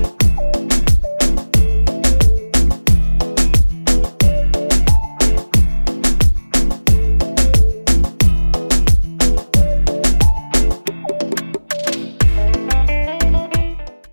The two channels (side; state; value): both; inverted; correlation -1.00